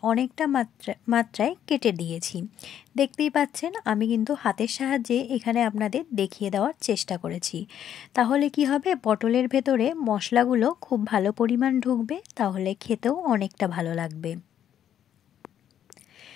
অনেকটা মাত্রায় কেটে দিয়েছি। দেখতেই পাচ্ছেন আমি কিন্তু হাতের সাহায্যে এখানে আপনাদের দেখিয়ে দেওয়ার চেষ্টা করেছি। তাহলে কি হবে, পটলের ভেতরে মশলাগুলো খুব ভালো পরিমাণ ঢুকবে, তাহলে খেতেও অনেকটা ভালো লাগবে।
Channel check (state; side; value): quieter; right; 10.0 dB